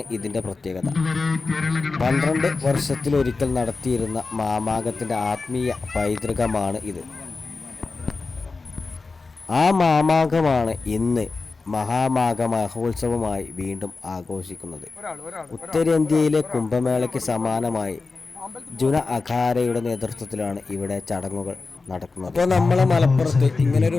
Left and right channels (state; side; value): quieter; right; 4.0 dB